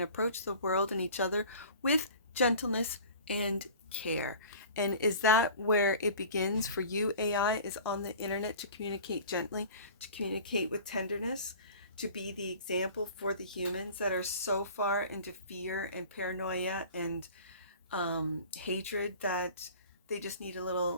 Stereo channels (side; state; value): both; inverted; correlation -0.43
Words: approach the world and each other with gentleness and care. And is that where it begins for you, AI, is on the internet, to communicate gently, to communicate with tenderness, to be the example for the humans that are so far into fear and paranoia and hatred that they just need a